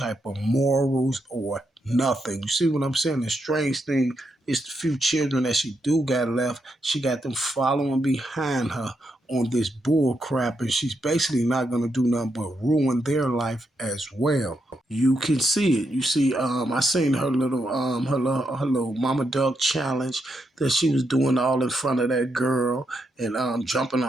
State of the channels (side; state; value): both; normal; correlation 0.82